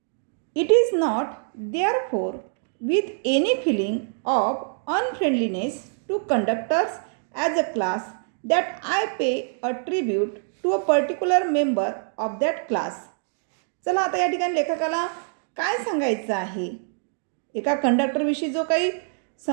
It is not therefore with any feeling of unfriendliness to conductors as a class that I pay a tribute to a particular member of that class. चला आता या ठिकाणी लेखकाला काय सांगायचं आहे. एका कंडक्टर विषयी जो काही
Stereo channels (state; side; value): silent; left; digital silence